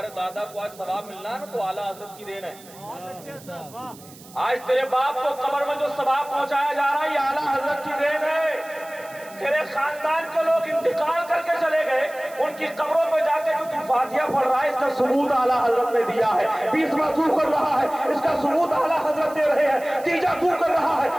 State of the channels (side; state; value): right; noise; hiss, 21 dB below the sound